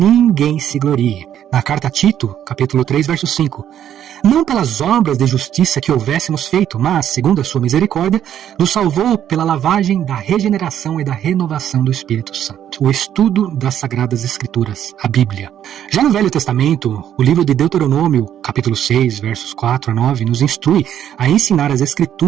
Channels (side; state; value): left; quieter; 10.4 dB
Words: se glorie. Na carta a Tito, capítulo 3, verso 5. Não pelas obras de justiça que houvéssemos feito, mas, segundo a sua misericórdia, nos salvou pela lavagem da regeneração e da renovação do Espírito Santo. O estudo das Sagradas Escrituras, a Bíblia. Já no Velho Testamento, o livro de Deuteronômio, capítulo 6, versos 4 a 9, nos instrui a ensinar as